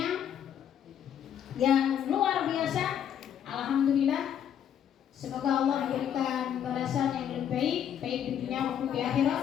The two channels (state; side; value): quieter; right; 9.3 dB